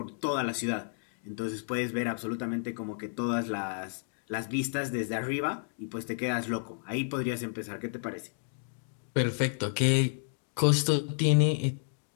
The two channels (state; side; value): silent; right; digital silence